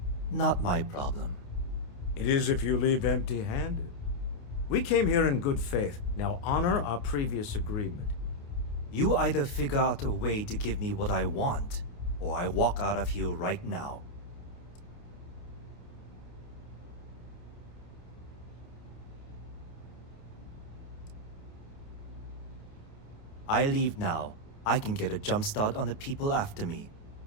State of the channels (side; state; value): right; late; 28 ms